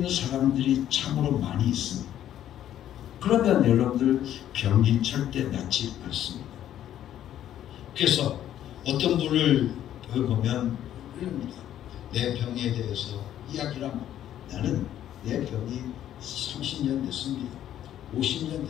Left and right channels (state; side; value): quieter; right; 11.4 dB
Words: 사람들이 참으로 많이 있습니다. 그러면 여러분들 병이 절대 낫지 않습니다. 그래서 어떤 분을 보면 이럽니다. 내 병에 대해서 이야기를 하면 나는 내 병이 30년 됐습니다. 50년